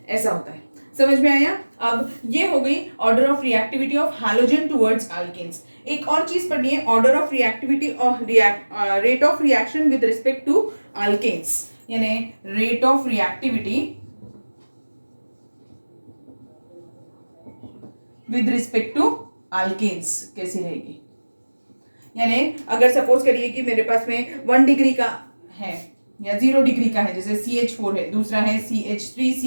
ऐसा होता है। समझ में आया? अब ये हो गई order of reactivity of halogen towards alkanes. एक और चीज पढ़नी है, order of reactivity of rate of reaction with respect to alkanes, यानी rate of reactivity with respect to alkanes कैसी रहेगी। यानी अगर सपोज करिए कि मेरे पास में 1 डिग्री का है या 0 डिग्री का है, जैसे CH4 है, दूसरा है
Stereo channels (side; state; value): both; inverted; correlation -1.00